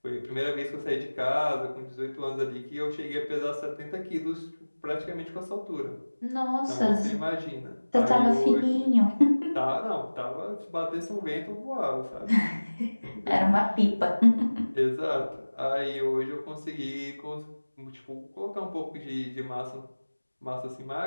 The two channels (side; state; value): both; inverted; correlation -1.00